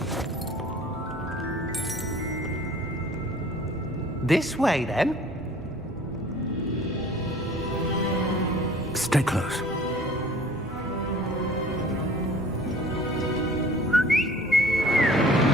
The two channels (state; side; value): normal; both; correlation 0.49